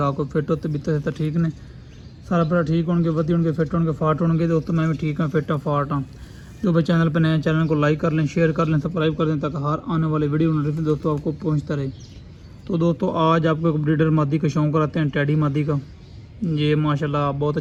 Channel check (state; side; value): identical; both; correlation 1.00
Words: हो, फिट होते बीते तो ठीक ने सारा भरा ठीक होंगे, वधी होंगे, फिट होंगे, फाट होंगे। दोस्तों मैं भी ठीक हाँ, फिट हाँ, फाट हाँ। जो भाई चैनल पर नए चैनल को लाइक कर लें, शेयर कर लें, सब्सक्राइब कर दें, ताकि हर आने वाले वीडियो नोटिफिकेशन दोस्तों आपको पहुँचता रहे। तो दोस्तों आज आपको एक ब्रीडर मादी का शौक कराते हैं, टैडी मादी का। ये माशाल्लाह बहुत